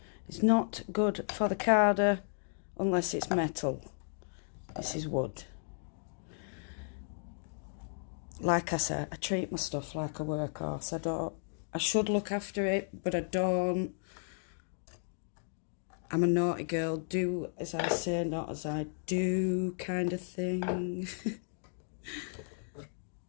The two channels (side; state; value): right; silent; digital silence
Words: It's not good for the carder unless it's metal. This is wood. Like I said, I treat my stuff like a workhorse. I should look after it, but I don't. I'm a naughty girl, do as I say, not as I do kind of thing.